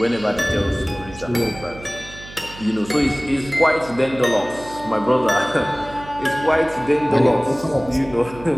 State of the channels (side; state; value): right; noise; hum, 17 dB below the sound